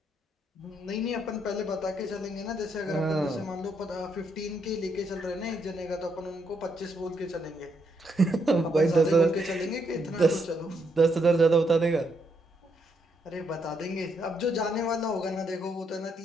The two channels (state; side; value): normal; both; correlation 0.76